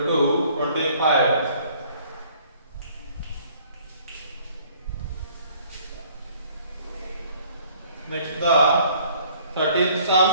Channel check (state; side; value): inverted; both; correlation -0.58